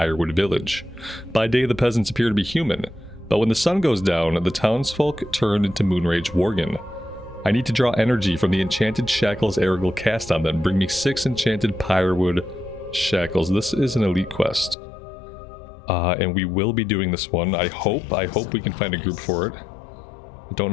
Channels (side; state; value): right; drops out; at 14.8 s